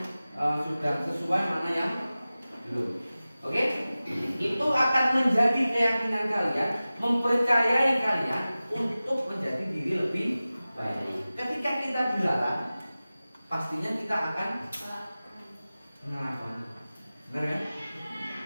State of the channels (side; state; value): both; inverted; correlation -0.96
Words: sudah sesuai, mana yang belum. Oke? Itu akan menjadi keyakinan kalian, mempercayai kalian untuk menjadi diri lebih baik. Ketika kita dilarang, pastinya kita akan melakukan. Benar kan?